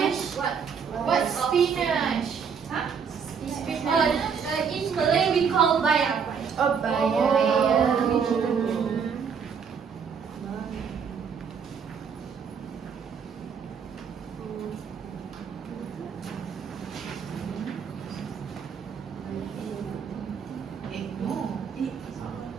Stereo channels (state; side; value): quieter; left; 6.5 dB